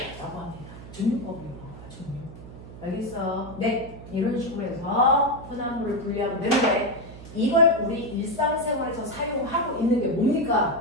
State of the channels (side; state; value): right; noise; hum, 15 dB below the sound